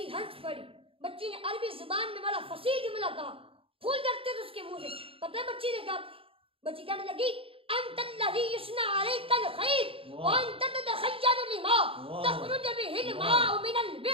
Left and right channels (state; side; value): late; left; 0.27 ms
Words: ہنس پڑی. بچی نے عربی زبان میں بڑا فصیح جملہ کہا, پھول جھڑتے تھے اس کے منہ سے. پتہ ہے بچی نے کہا؟ بچی کہنے لگی انت الذی یصنع علیک الخیر وانت تتخیل لما تخرج به الماء من